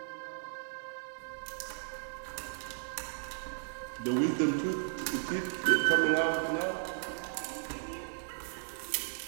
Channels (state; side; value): silent; left; digital silence